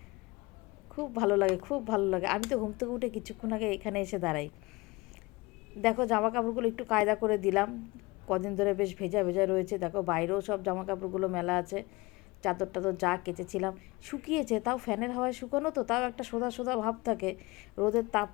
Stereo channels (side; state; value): right; quieter; 23.2 dB